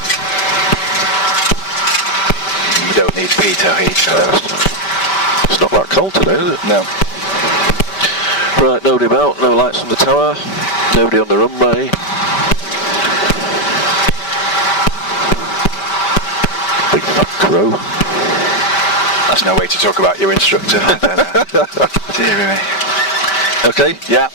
We don't need pitot heat. It's not that cold today, is it? No. Right, nobody about, no lights on the tower, nobody on the runway. Big fat crow. That's no way to talk about your instructor. I don't know. Dear me. Okay, Yeah.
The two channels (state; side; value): late; right; 5.1 ms